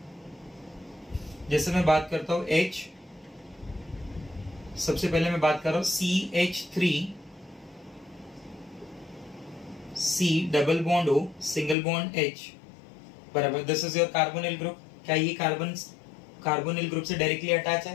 जैसे मैं बात करता हूं H, सबसे पहले मैं बात कर रहा हूं CH3 C double bond O single bond H. बराबर, this is your carbonyl group. क्या ये कार्बोनिल ग्रुप से डायरेक्टली अटैच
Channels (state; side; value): drops out; right; at 11.8 s